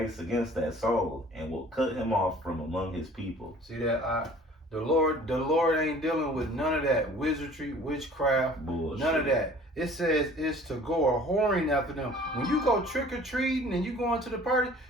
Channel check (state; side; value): normal; both; correlation 0.49